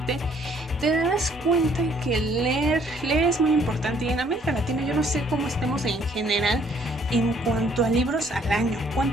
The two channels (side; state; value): both; normal; correlation 0.63